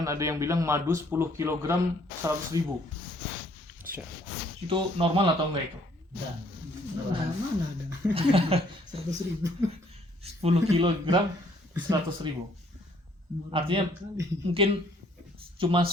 ada yang bilang madu 10 kg 100.000. Itu normal atau enggak itu? Mana ada 100.000. 10 kg 100.000. Artinya mungkin cuma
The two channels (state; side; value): normal; both; correlation 0.63